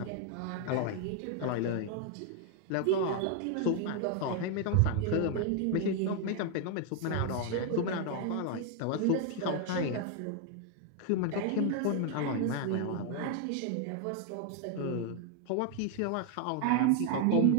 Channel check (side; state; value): both; different; correlation 0.00